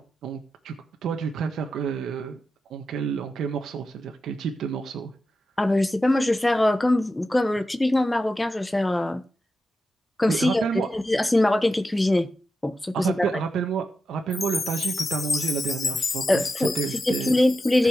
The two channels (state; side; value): normal; both; correlation 0.89